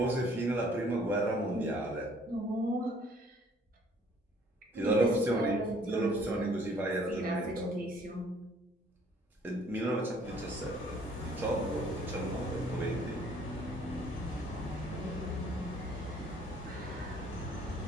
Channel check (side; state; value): both; normal; correlation 0.59